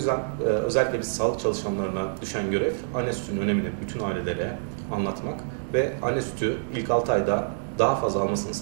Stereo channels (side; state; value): left; silent; digital silence